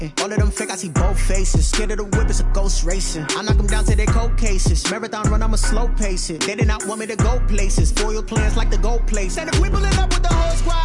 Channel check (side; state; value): both; identical; correlation 1.00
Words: All of them fake, I see both faces. Scared of the whip, it's a ghost racing. I knock them down to their cold cases. Marathon run, I'ma slow pace it. They did not want me to go places. Foil plans like the gold place. And if we pulling up with the whole